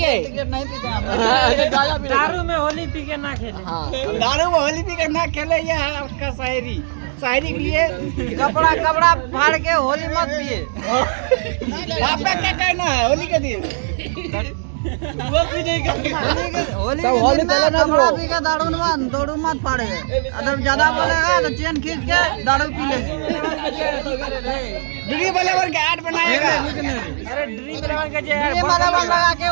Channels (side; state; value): left; silent; digital silence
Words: सिगरेट नहीं पीते हम। दारू में होली पी के ना खेले। हाँ, दारू में होली पी कर ना खेले, ये है आपका शायरी। शायरी के लिए कपड़ा फाड़ के होली मत पिए। आपका क्या कहना है होली के दिन? वो भी नहीं करते। होली के दिन में कपड़ा पी के दारू मत फाड़े। अगर ज्यादा बोलेगा तो चेन खींच के दारू पी लेगी। ड्री बलेवर के ऐड बनाएगा। अरे ड्रीम इलेवन का जो ये बराबर लगा के